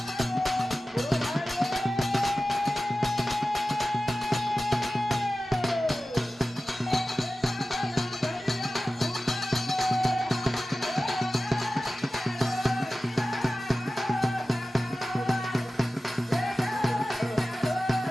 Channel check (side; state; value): both; normal; correlation 0.95